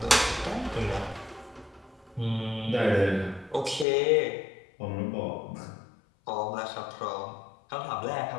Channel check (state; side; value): drops out; right; at 3.9 s